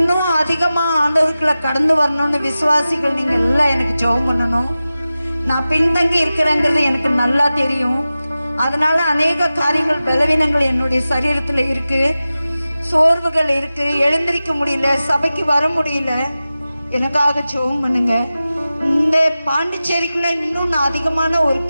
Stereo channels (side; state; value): both; inverted; correlation -0.95